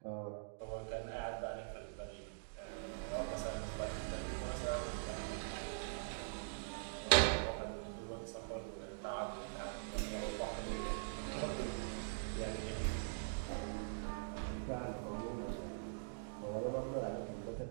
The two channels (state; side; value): silent; left; digital silence